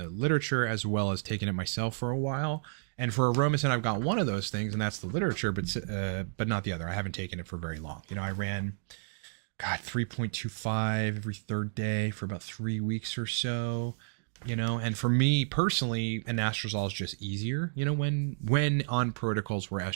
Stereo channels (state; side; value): silent; left; digital silence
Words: literature, as well as taking it myself for a while. And for Aromasin, I've got one of those things, and that's the literature, but not the other. I haven't taken it for very long. I ran, 3.25 every third day for about 3 weeks or so. And for me personally, anastrozole is just easier, when on protocols where